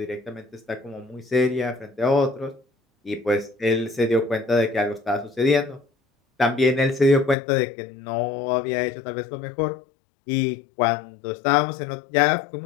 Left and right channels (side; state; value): right; drops out; at 7.4 s